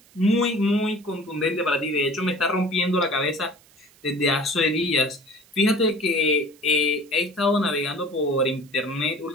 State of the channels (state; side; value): noise; right; hiss, 28 dB below the sound